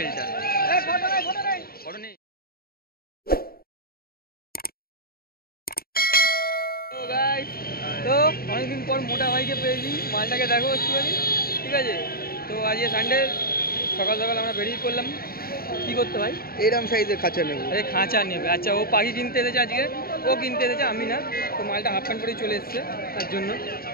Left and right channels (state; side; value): late; right; 0.44 ms